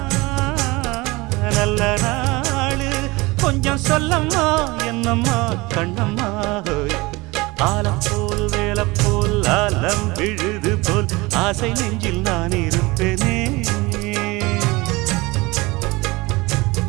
நல்ல நாளு கொஞ்சம் சொல்லம்மா என்னம்மா கண்ணம்மா ஆலம் போல் வேலை போல் ஆலம் விழுது போல் ஆசை நெஞ்சில் நான் இருப்பேனே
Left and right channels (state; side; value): quieter; left; 22.9 dB